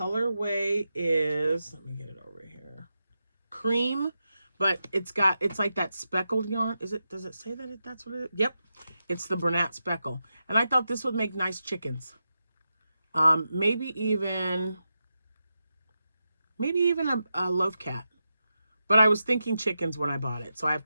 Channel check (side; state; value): both; inverted; correlation -0.89